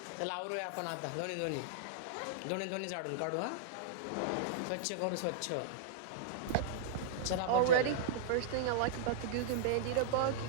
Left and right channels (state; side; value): different; both; correlation -0.02